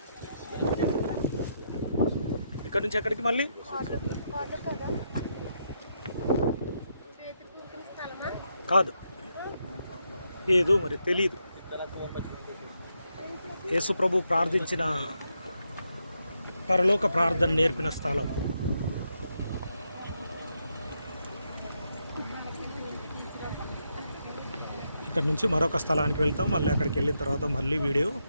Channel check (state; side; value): inverted; both; correlation -0.80